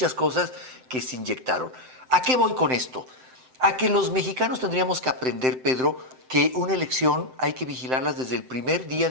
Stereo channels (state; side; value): late; left; 7.8 ms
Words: cosas que se inyectaron. ¿A qué voy con esto? A que los mexicanos tendríamos que aprender, Pedro, que una elección hay que vigilarlas desde el primer día